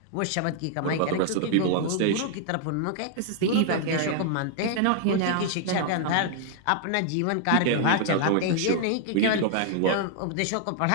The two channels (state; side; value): different; both; correlation -0.01